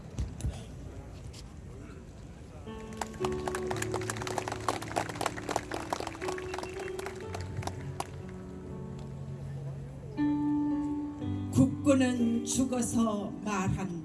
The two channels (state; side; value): identical; both; correlation 1.00